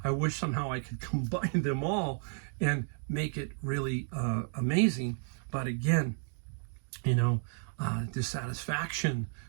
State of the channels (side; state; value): left; silent; 56 dB below the other